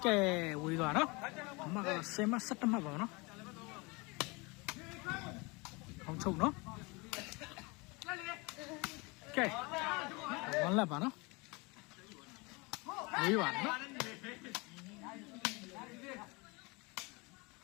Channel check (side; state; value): right; quieter; 27.1 dB